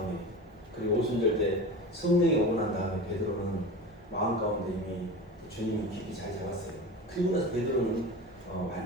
그리고 오순절 때 성령이 오고 난 다음에 베드로는 마음 가운데 이미 주님이 깊이 잘 잡았어요. 그리고 나서 베드로는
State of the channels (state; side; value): normal; both; correlation 0.30